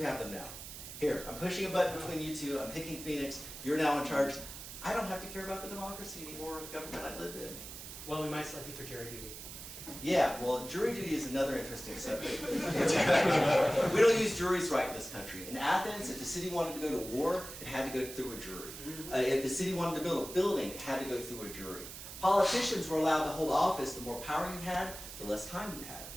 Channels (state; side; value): noise; right; hiss, 11 dB below the sound